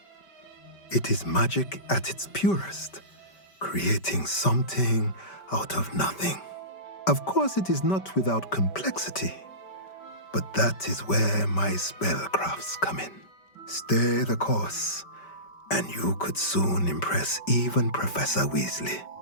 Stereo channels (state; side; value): late; right; 5.2 ms